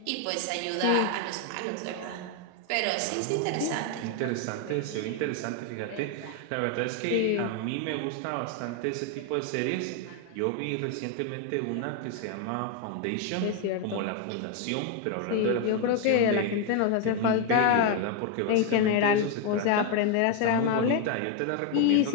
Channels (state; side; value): different; both; correlation 0.01